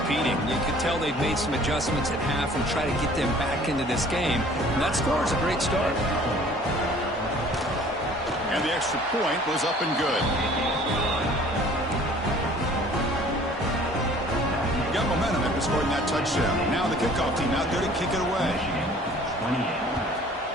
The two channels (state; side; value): normal; both; correlation 0.52